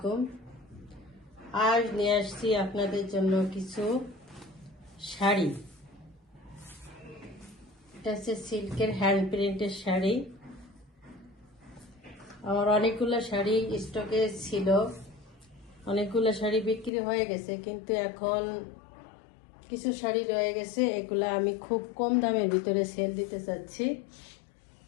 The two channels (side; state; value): right; drops out; at 16.9 s